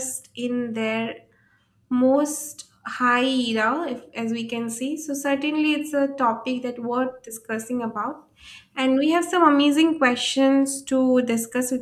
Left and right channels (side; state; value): both; identical; correlation 1.00